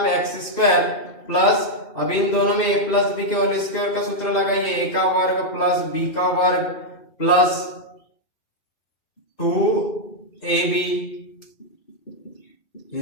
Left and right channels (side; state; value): right; late; 2.6 ms